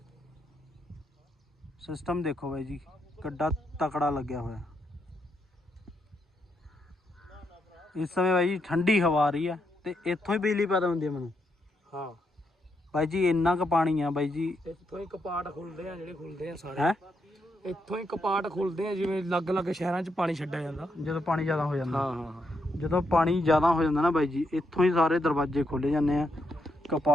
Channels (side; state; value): both; normal; correlation 0.80